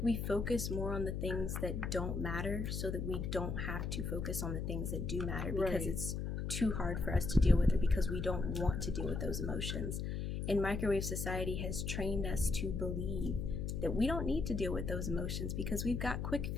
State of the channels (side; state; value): left; noise; hum, 2 dB below the sound